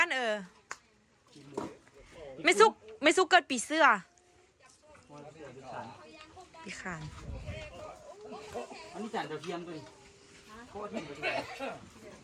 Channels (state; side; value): identical; both; correlation 1.00